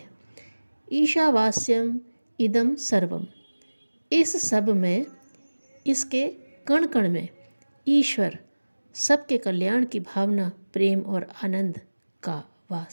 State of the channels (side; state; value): both; inverted; correlation -1.00